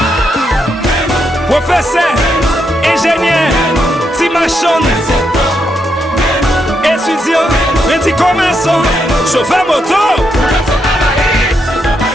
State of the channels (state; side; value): normal; both; correlation 0.80